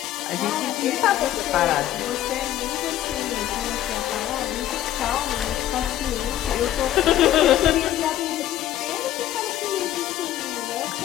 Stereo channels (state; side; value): quieter; right; 12.7 dB